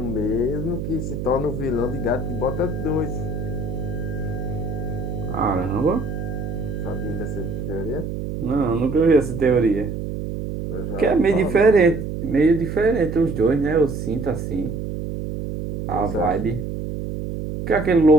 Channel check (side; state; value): right; noise; hum, 5 dB below the sound